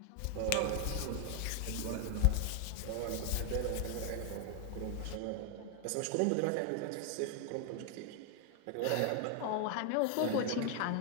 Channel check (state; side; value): different; both; correlation 0.00